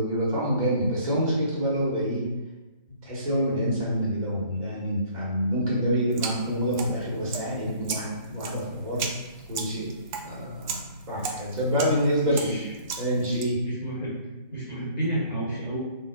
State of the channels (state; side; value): inverted; both; correlation -0.54